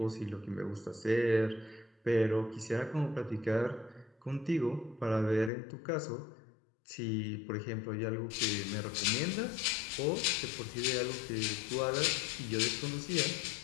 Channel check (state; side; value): drops out; right; at 5.5 s